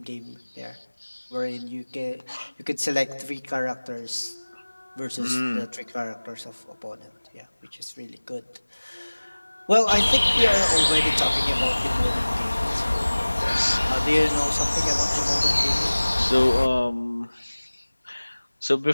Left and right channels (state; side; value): inverted; both; correlation -1.00